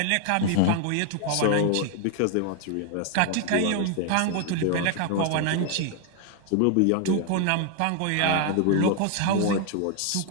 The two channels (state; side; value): different; both; correlation 0.00